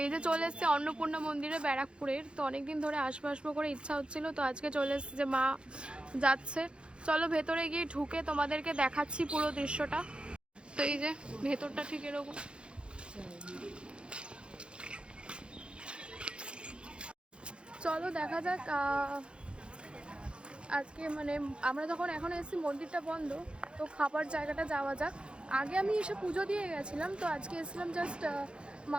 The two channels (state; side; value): late; left; 0.056 ms